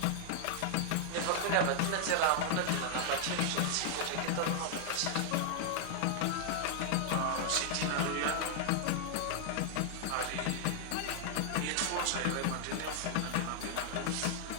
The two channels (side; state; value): both; different; correlation 0.00